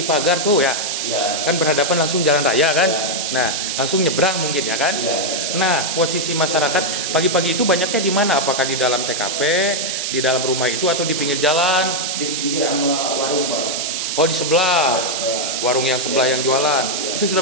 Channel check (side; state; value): right; noise; hiss, 2 dB below the sound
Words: pagar tuh ya, Iya. kan berhadapan langsung jalan raya kan, Ya. nah langsung nyebrang mungkin ya kan, Iya. nah posisi masyarakat pagi-pagi itu banyaknya di mana? Apakah di dalam TKP, di dalam rumah itu atau di pinggir jalan? Di pinggir sama warung Pak. Oh di sebelah, warung yang sebelah Ya. yang jualan, Ya. itu